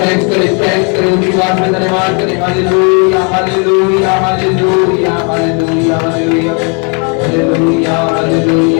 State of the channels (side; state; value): right; quieter; 35.4 dB